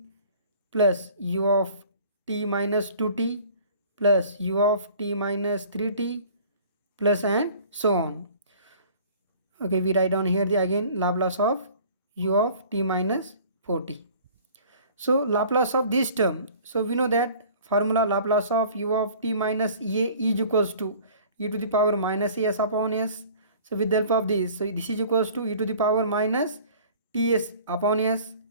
plus u of t minus 2t plus u of t minus 3t plus, and so on. Okay, we write down here the again Laplace of u of t minus 4t. So Laplace of this term, so we know that formula Laplace of u of t minus a is equals to e to the power minus as upon s. So with the help of this, so this is equals to e to the power minus ts upon s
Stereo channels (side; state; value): both; inverted; correlation -0.48